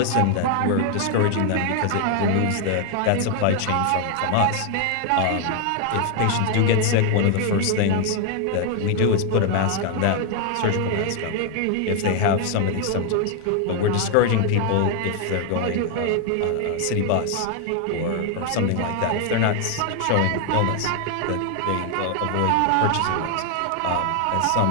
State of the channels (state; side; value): different; both; correlation 0.00